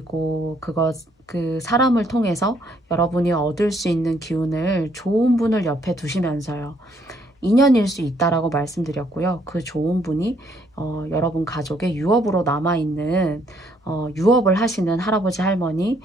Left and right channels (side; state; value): both; normal; correlation 0.68